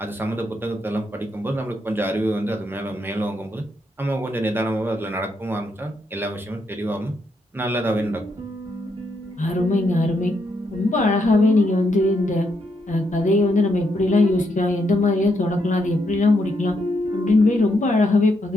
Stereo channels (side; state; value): both; normal; correlation 0.78